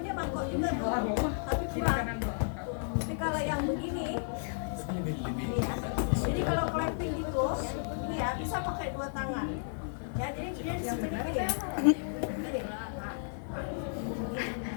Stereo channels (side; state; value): right; silent; 56 dB below the other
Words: dia mangkok juga tuh, tapi kurang. Tapi kalau yang begini, ini ya. Jadi kalau clapping gitu, ini ya bisa pakai 2 tangan. Ya, jadi dia di sini gini.